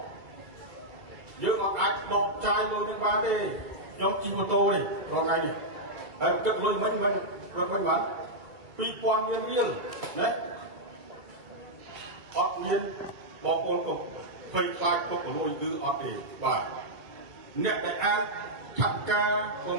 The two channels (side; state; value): left; late; 2.0 ms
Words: យើងអាចដកចាយលុយនេះបានទេខ្ញុំជិះម៉ូតូនេះរាល់ថ្ងៃនេះហើយគិតលុយមិនរកវិញបាន2000រៀលណាអត់មានបងប្អូនក៏ភ័យខ្លាចពុកលុយគឺអត់ទេបាទអ្នកដែលអាចថាត់ការប្រ